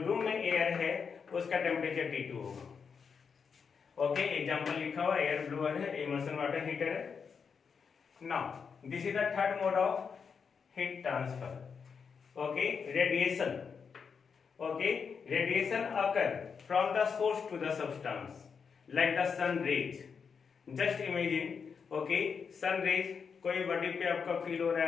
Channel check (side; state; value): right; quieter; 6.1 dB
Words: रूम में एयर है उसका टेम्परेचर T2 होगा। ओके, एग्जांपल लिखा हुआ एयर ब्लोअर है, इमर्शन वाटर हीटर है। Now this is the third mode of heat transfer okay, radiation. Okay, radiation occur from the source to the substance like the sun rays. Just imagine, okay, sun rays कोई body पे आपका feel हो रहा